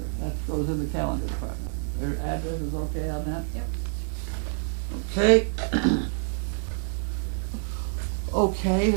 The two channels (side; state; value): left; silent; digital silence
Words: That goes in the calendar department. Their address is okay on that? Yep. Okay. Okay,